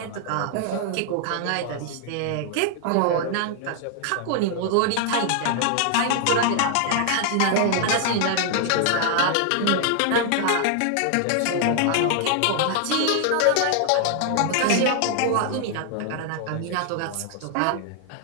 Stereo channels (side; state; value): both; different; correlation 0.00